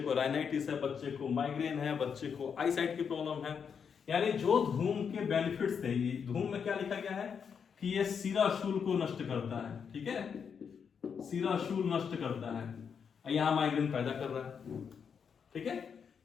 को राइनाइटिस है, बच्चे को माइग्रेन है, बच्चे को आईसाइट की प्रॉब्लम है। यानी जो धूम के बेनिफिट्स थे, धूम में क्या लिखा गया है कि ये सिराशूल को नष्ट करता है, ठीक है, सिराशूल नष्ट करता है, यहां माइग्रेन पैदा कर रहा है, ठीक है।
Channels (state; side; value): quieter; right; 6.8 dB